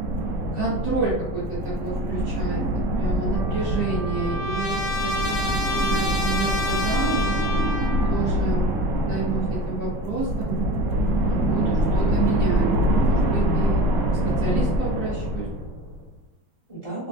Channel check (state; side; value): normal; both; correlation 0.35